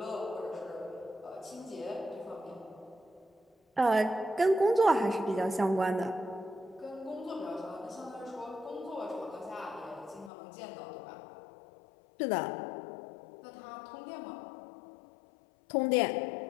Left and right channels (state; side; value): drops out; right; at 10.3 s